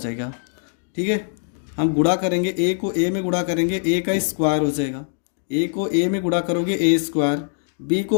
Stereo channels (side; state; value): right; silent; digital silence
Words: ठीक है। हम गुणा करेंगे, ए को ए में गुणा करेंगे, ए का स्क्वायर हो जाएगा। ए को ए में गुणा करोगे ए स्क्वायर, बी